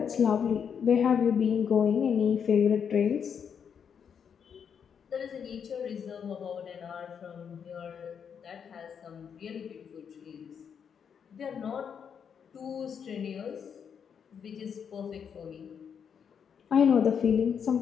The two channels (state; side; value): quieter; right; 7.3 dB